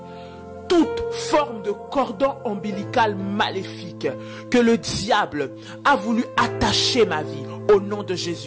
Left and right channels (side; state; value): both; identical; correlation 1.00